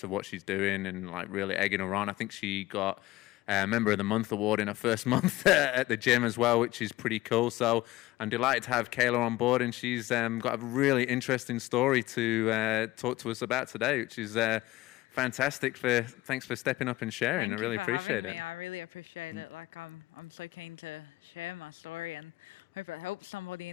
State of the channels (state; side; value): quieter; right; 18.0 dB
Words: of what she's doing and like really egging her on. I think she got Member of the Month award in her first month at the gym as well, which is pretty cool. So I'm delighted to have Kailah on board, and she's got a really interesting story to talk to us about today, which is fantastic. Thanks for stepping up and sharing. Thank I really you for appreciate having it. me. I really appreciate it. Like I'm so keen to share my story and hope it helps somebody